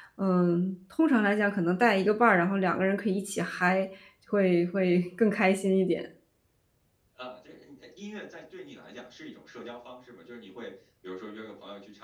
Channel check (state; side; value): identical; both; correlation 1.00